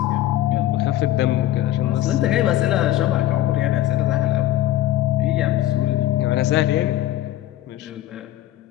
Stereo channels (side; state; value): right; quieter; 13.6 dB